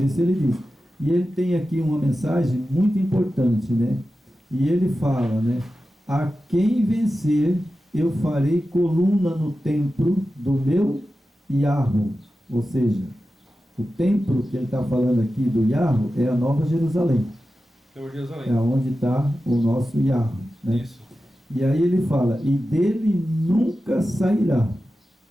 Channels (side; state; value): both; normal; correlation 0.93